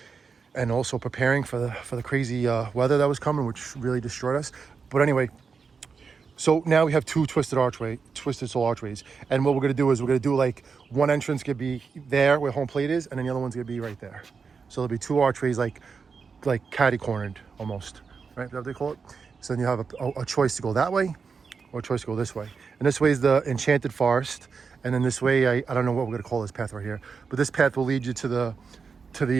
and also preparing for the crazy weather that was coming, which really destroyed us. But anyway, so now we have two Twisted Soul Archways, and what we're gonna do is we're gonna do like one entrance could be there where home plate is, and then the other one's gonna be right there. So there'll be two archways like catty cornered almost, right? Is that what they call it? So then you have a choice to go that way or a choice to go this way. And this way is the Enchanted Forest, and then this way I don't know what we're gonna call this path right here, but this path will lead you to the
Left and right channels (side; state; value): left; quieter; 5.4 dB